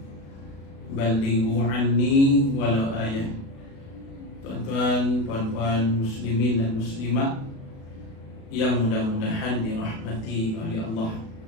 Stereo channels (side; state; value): right; late; 36 ms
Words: balighu anni walau ayah. Tuan-tuan, puan-puan muslimin dan muslimat yang mudah-mudahan dirahmati oleh Allah.